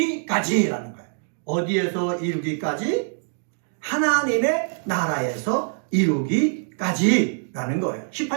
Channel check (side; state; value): left; silent; digital silence